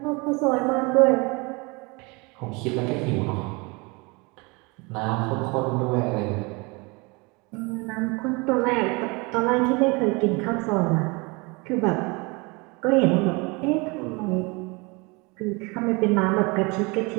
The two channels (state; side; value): quieter; left; 27.5 dB